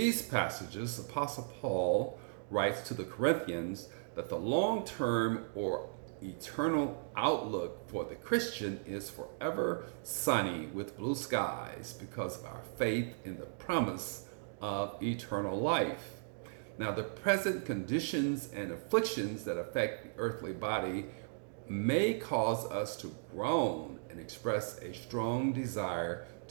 passages, Apostle Paul writes to the Corinthians that the long-term or eternal outlook for the Christian is forever sunny with blue skies because of our faith in the promise of eternal life. Now, the present conditions and afflictions that affect the earthly body may cause us to groan and express a strong desire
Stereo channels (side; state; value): left; silent; digital silence